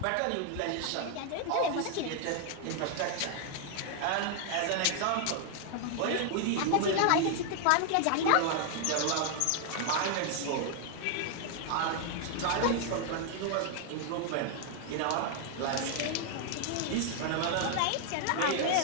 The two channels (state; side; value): different; both; correlation 0.00